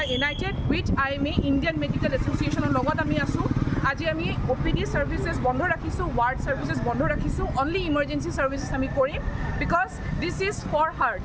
united with IMA Indian Medical Association লগত আমি আছোঁ। আজি আমি OPD services বন্ধ ৰাখিছোঁ, ward services বন্ধ ৰাখিছোঁ, only emergency services আমি কৰিম, because this is for her,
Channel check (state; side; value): identical; both; correlation 1.00